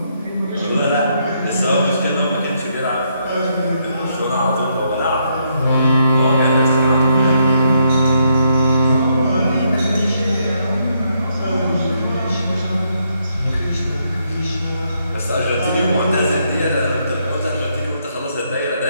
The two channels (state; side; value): inverted; both; correlation -0.74